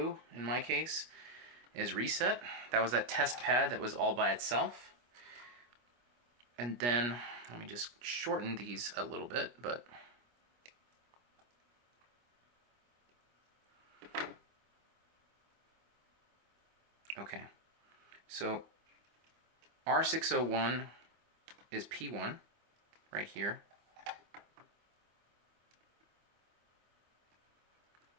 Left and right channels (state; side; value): late; left; 25 ms